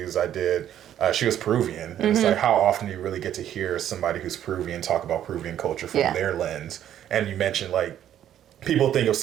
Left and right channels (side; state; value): left; quieter; 10.9 dB